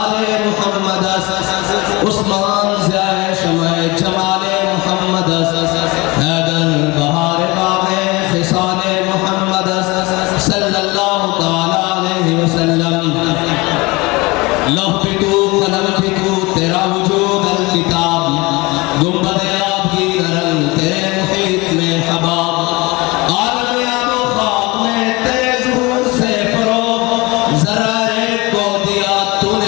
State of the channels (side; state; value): right; quieter; 24.0 dB